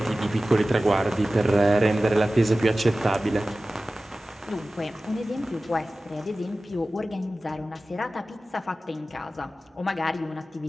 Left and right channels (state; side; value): normal; both; correlation 0.96